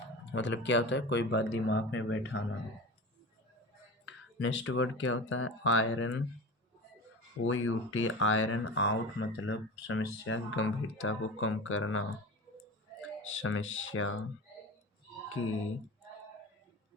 मतलब क्या होता है? कोई बात दिमाग में बैठाना. नेक्स्ट वर्ड क्या होता है? आयरन, OUT, आयरन आउट मतलब समस्या की गंभीरता को कम करना. समस्या की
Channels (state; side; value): normal; both; correlation 0.31